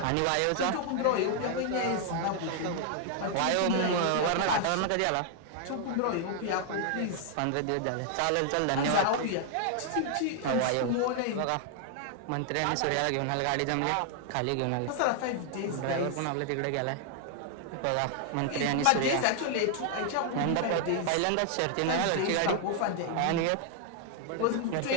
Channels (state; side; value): different; both; correlation 0.00